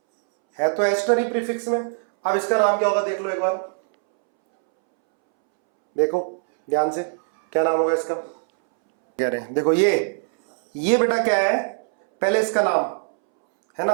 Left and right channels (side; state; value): left; silent; 64 dB below the other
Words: है तो एस्टर ही प्रीफिक्स में। अब इसका नाम क्या होगा, देख लो एक बार, देखो ध्यान से, क्या नाम होगा इसका, कह रहे हैं देखो ये बेटा क्या है, पहले इसका नाम है